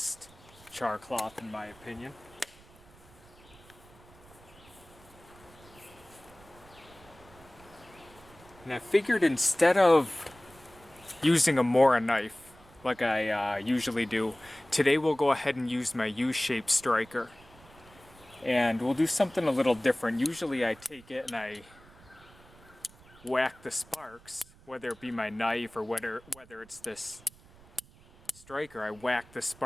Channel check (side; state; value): right; noise; rumble, 24 dB below the sound